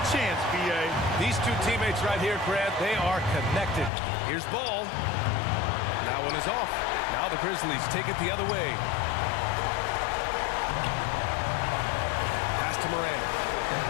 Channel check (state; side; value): drops out; right; at 3.9 s